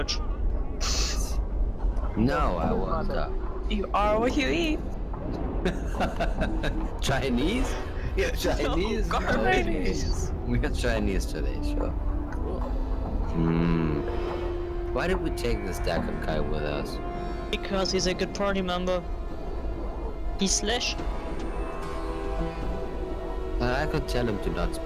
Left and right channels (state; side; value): identical; both; correlation 1.00